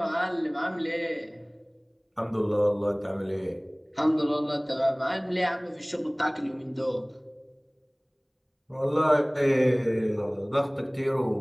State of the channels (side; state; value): both; identical; correlation 1.00